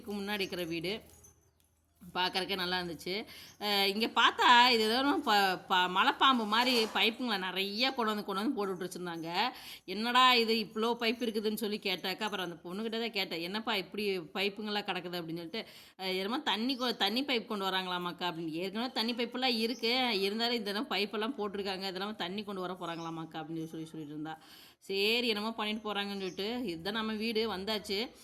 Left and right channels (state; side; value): identical; both; correlation 1.00